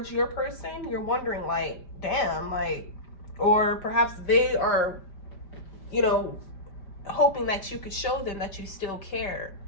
your person. You're wondering, like, damn, like, or perhaps they are you know, hoping that you could show them that you still care,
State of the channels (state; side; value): late; right; 5.1 ms